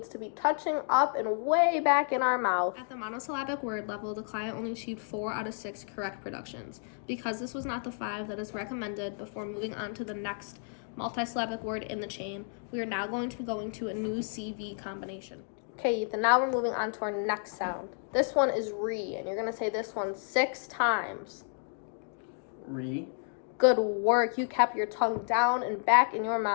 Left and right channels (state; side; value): silent; right; 57 dB below the other